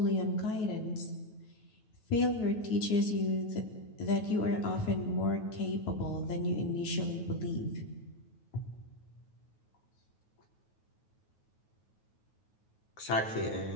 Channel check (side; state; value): right; late; 9.3 ms